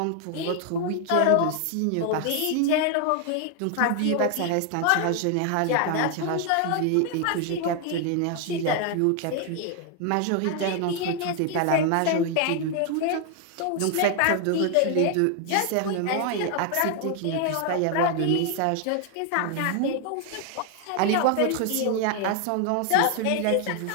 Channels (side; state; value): both; different; correlation 0.00